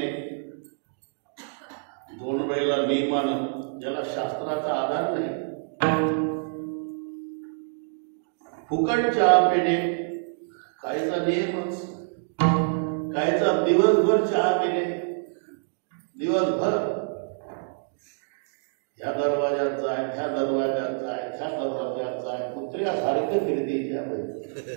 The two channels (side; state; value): left; silent; digital silence